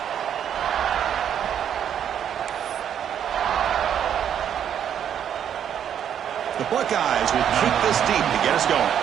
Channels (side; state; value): left; quieter; 9.2 dB